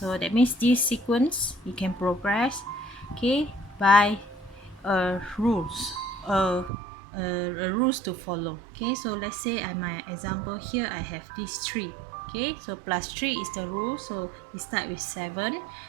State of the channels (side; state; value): left; drops out; at 6.7 s